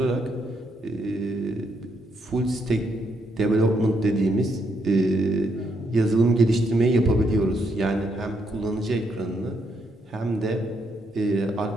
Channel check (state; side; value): normal; both; correlation 0.76